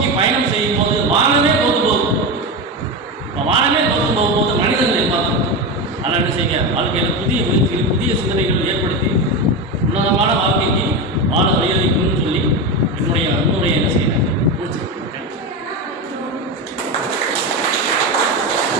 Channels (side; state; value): both; normal; correlation 0.18